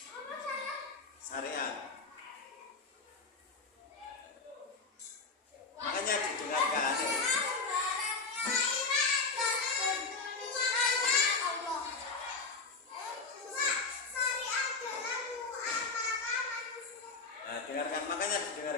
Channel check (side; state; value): right; quieter; 4.2 dB